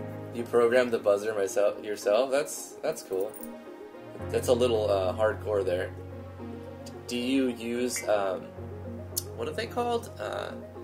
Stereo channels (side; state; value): both; identical; correlation 1.00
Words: You programmed the buzzer yourself? That's cool. That's a little hardcore there. Do you use what are they called?